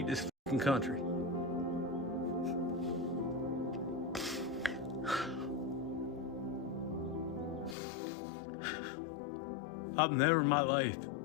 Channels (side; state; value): right; drops out; at 7.8 s